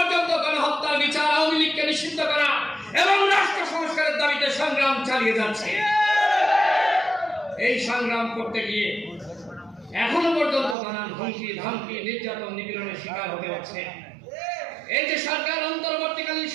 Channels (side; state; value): left; drops out; at 10.8 s